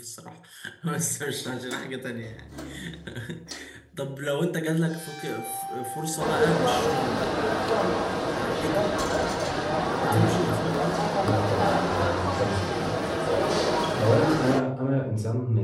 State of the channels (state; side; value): identical; both; correlation 1.00